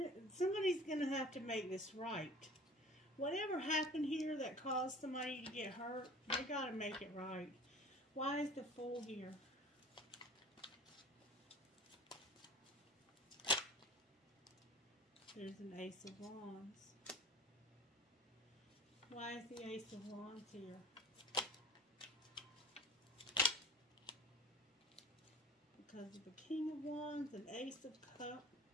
somebody's going to have to make this right. Whatever happened here that caused somebody to get hurt, they got to make it right. Why is the Fool here? There's an Ace of Wands. Why is the Ace of Wands here? Because of the King of Wands and Ace of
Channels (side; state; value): both; normal; correlation 0.42